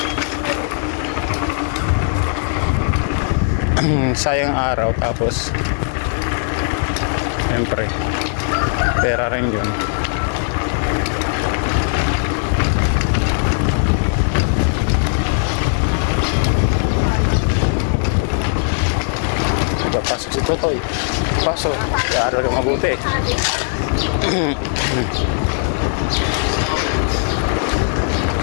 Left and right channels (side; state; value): right; silent; digital silence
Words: Sayang araw. Tapos siyempre pera rin yun. Pasok si Totoy. Pasok. Kaya ko mabuti.